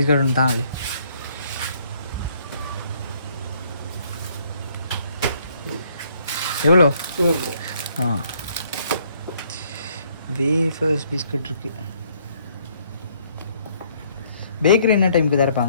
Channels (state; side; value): inverted; both; correlation -0.66